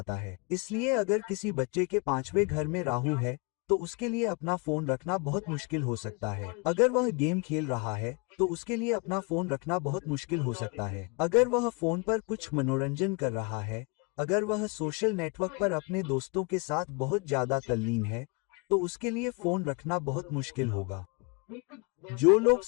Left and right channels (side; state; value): right; quieter; 31.9 dB